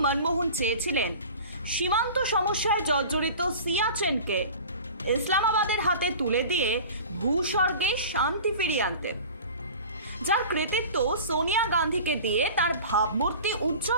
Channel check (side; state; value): both; inverted; correlation -0.39